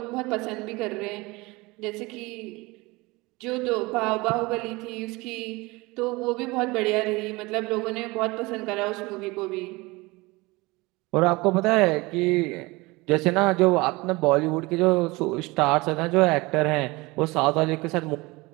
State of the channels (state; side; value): quieter; left; 23.1 dB